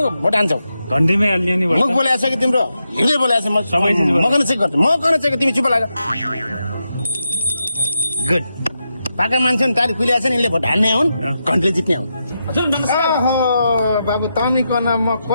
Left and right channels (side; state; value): both; inverted; correlation -0.86